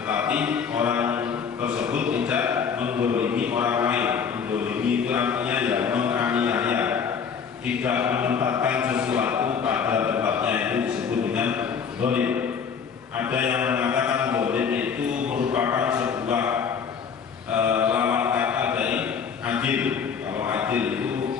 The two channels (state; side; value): quieter; right; 6.6 dB